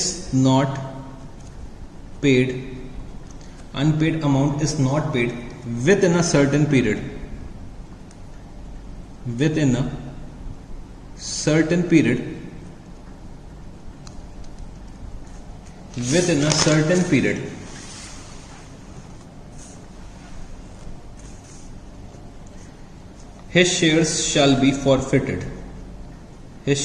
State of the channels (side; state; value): both; identical; correlation 1.00